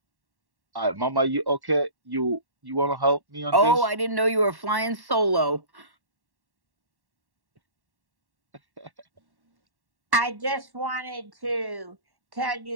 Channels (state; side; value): late; left; 1.1 ms